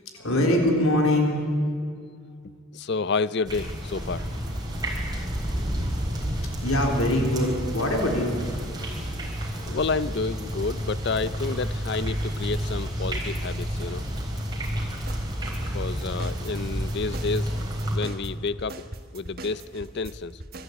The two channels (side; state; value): both; normal; correlation 0.47